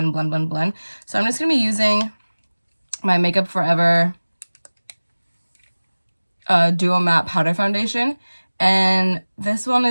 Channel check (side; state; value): both; inverted; correlation -1.00